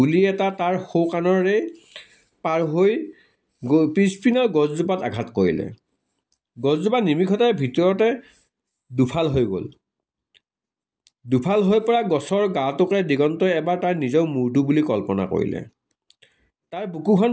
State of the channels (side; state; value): both; identical; correlation 1.00